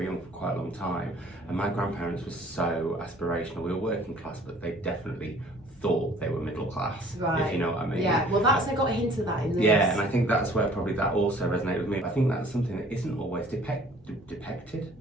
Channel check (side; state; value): both; normal; correlation 0.53